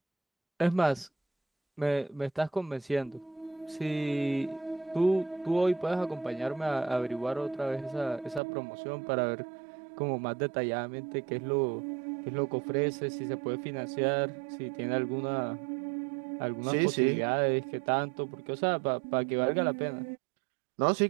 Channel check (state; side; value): drops out; left; at 8.4 s